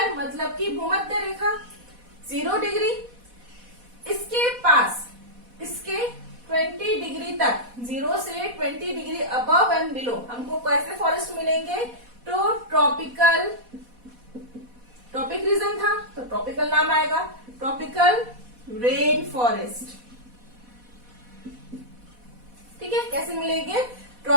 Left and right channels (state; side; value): late; left; 4.1 ms